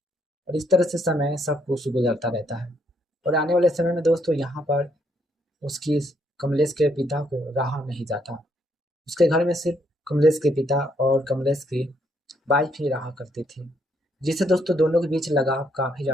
और इस तरह से समय सब कुछ गुजरता रहता है। और आने वाले समय में दोस्तों यहाँ पर उसकी कमलेश के पिता को रहा नहीं जाता। उसके घर में सिर्फ कमलेश के पिता और कमलेश की वाइफ ही रहा करती थी, जिससे दोस्तों दोनों के बीच लगाव काफ़ी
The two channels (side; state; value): both; normal; correlation 0.72